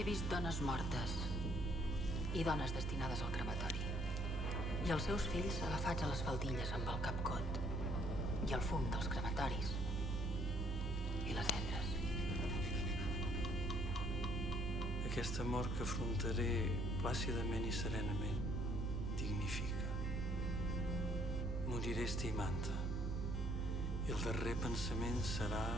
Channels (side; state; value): both; normal; correlation 0.64